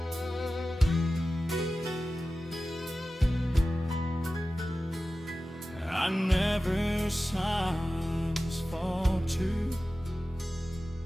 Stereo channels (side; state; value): both; normal; correlation 0.95